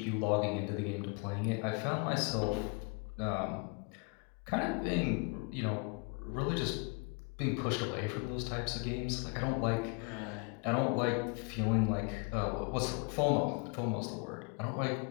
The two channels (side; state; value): right; quieter; 33.6 dB